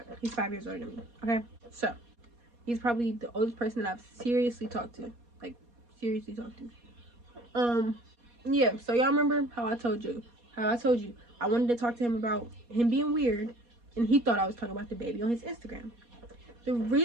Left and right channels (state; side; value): late; left; 4.2 ms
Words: He's 5 years older than me. Okay? So, he's probably the oldest person that I've seriously talked to. Like, seriously talked to. Yeah, so y'all remember how I told you I wanted to talk to him about him being weird, and he thought I was talking about the baby on his Instagram. The